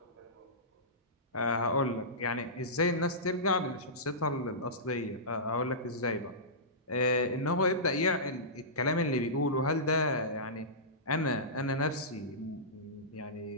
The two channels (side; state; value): both; normal; correlation -0.18